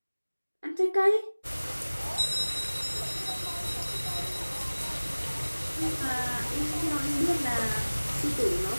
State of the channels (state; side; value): inverted; both; correlation -1.00